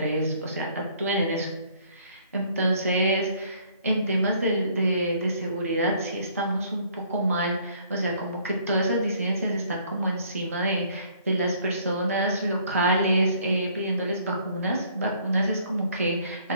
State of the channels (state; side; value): inverted; both; correlation -0.61